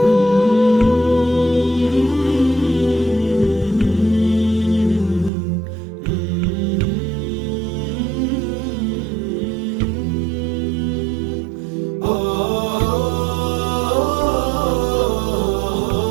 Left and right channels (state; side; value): drops out; left; at 5.3 s